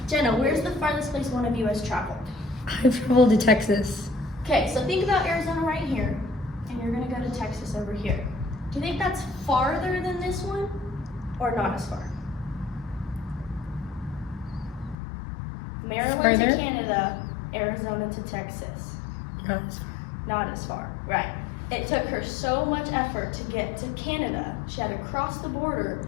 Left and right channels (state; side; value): drops out; right; at 15.0 s